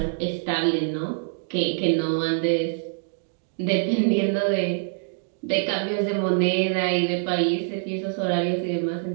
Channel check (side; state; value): left; silent; digital silence